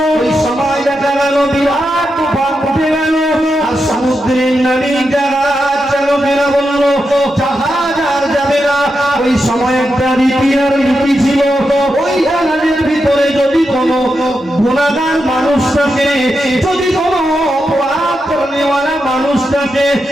ওই সময় দেখা গেল বিরাট তুফান উঠে গেল। আর সমুদ্রের নাবিক জাহাজ চালকেরা বলল জাহাজ আর যাবে না। ওই সময় একটা রীতি ছিল, ওই জাহাজের ভিতরে যদি কোনো গুনাহগার মানুষ থাকে, যদি কোনো অপরাধ করেওয়ালা মানুষ থাকে,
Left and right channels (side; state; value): both; normal; correlation 0.87